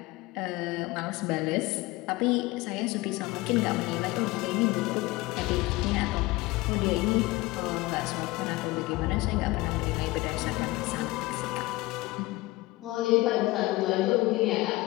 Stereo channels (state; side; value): quieter; right; 20.5 dB